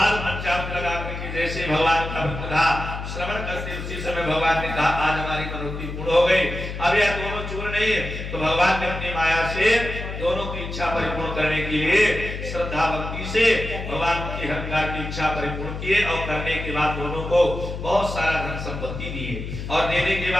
पंचामृत लगा करके जैसे भगवान का व्रत कथा श्रवण करते उसी समय भगवान ने कहा, आज हमारी मनोती पूर्ण हो गई। अब यह दोनों चूर नहीं है तो भगवान ने अपनी माया से दोनों की इच्छा परिपूर्ण करने के लिए श्रद्धा भक्ति से भगवान की हर प्रकार की इच्छा परिपूर्ण किए और करने के बाद दोनों को बहुत सारा धन संपत्ति दिए। और देने के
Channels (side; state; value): left; noise; hum, 7 dB below the sound